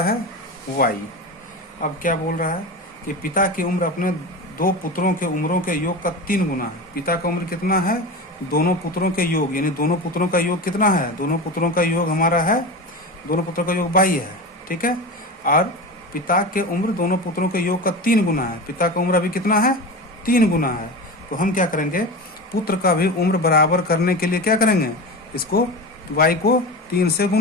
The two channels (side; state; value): both; normal; correlation 0.26